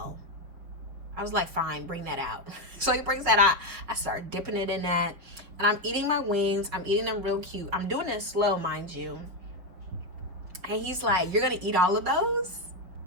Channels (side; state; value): left; late; 5.7 ms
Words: I was like, fine, bring that out. So he brings that out. I start dipping it in that. And I'm eating my wings. I'm eating them real cute. I'm doing it slow, mind you. And he's like, you're going to eat all of those?